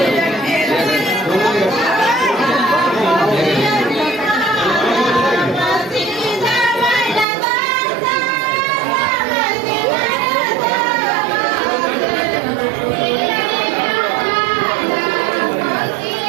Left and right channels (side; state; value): left; drops out; at 7.2 s